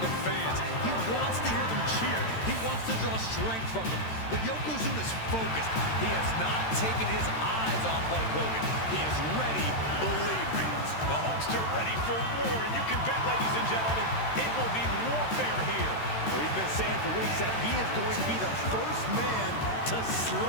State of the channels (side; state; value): right; late; 13 ms